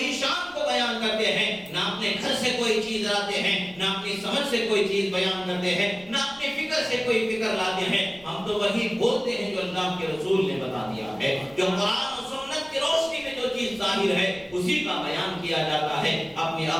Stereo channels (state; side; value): noise; right; rumble, 26 dB below the sound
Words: شان کو بیان کرتے ہیں، نہ اپنے گھر سے کوئی چیز لاتے ہیں، نہ اپنی سمجھ سے کوئی چیز بیان کرتے ہیں، نہ اپنی فکر سے کوئی فکر لاتے ہیں، ہم تو وہی بولتے ہیں جو اللہ کے رسول نے بتا دیا ہے، جو قرآن و سنت کی روشنی میں جو چیز ظاہر ہے اسی کا بیان کیا جاتا ہے، اپنی